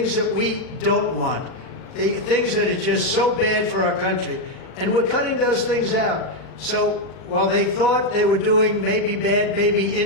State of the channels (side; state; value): right; late; 38 ms